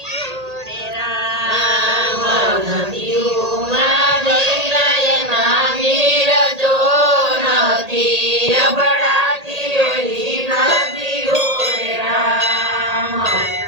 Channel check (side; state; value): left; late; 1.8 ms